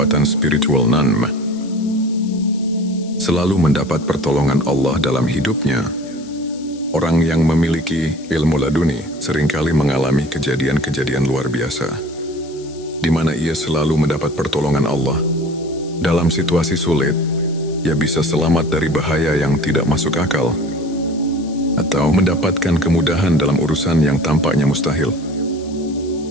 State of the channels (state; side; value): noise; left; hiss, 22 dB below the sound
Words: spiritual nanm. Selalu mendapat pertolongan Allah dalam hidupnya. Orang yang memiliki ilmu laduni seringkali mengalami kejadian-kejadian luar biasa, di mana ia selalu mendapat pertolongan Allah. Dalam situasi sulit, ia bisa selamat dari bahaya yang tidak masuk akal, atau mendapatkan kemudahan dalam urusan yang tampaknya mustahil.